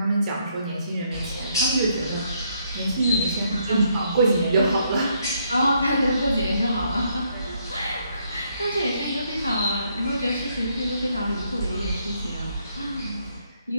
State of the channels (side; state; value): both; inverted; correlation -0.72